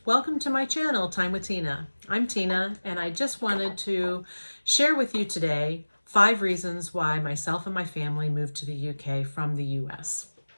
welcome to my channel, Time with Tina. I'm Tina, and I just wanted to share with you today 5 reasons why myself and my family moved to the UK from the US.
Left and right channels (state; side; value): inverted; both; correlation -1.00